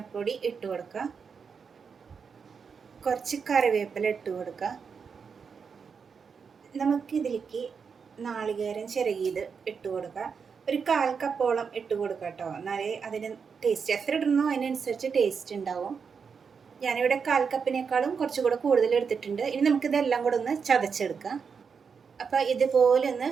ഇട്ട് കൊടുക്കുക. കുറച്ച് കറിവേപ്പില ഇട്ട് കൊടുക്കുക. നമുക്കിതിലേക്ക് നാളികേരം ചിരകിയത് ഇട്ട് കൊടുക്കുക. ഒരു 1/4 കപ്പോളം ഇട്ട് കൊടുക്കുക കേട്ടോ. എന്നാലേ അതിന് ടേസ്റ്റ്, എത്ര ഇടണോ അതിനനുസരിച്ച് ടേസ്റ്റ് ഉണ്ടാവും. ഞാനിവിടെ 1/4 കപ്പിനേക്കാളും കുറച്ചുകൂടെ കൂടുതൽ എടുത്തിട്ടുണ്ട്. ഇനി നമുക്കിതെല്ലാം കൂടെ ഒന്ന് ചതച്ചെടുക്കാം. അപ്പോൾ ഇതുപോലെ ഒന്ന്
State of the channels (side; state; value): left; quieter; 6.0 dB